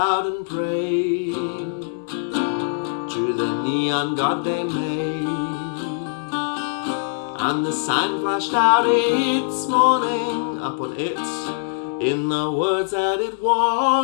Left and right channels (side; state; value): right; quieter; 32.6 dB